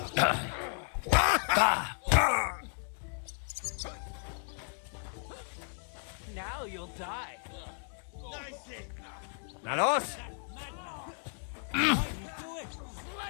Now you'll die. Nice hit! Nanos?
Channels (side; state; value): right; silent; 55 dB below the other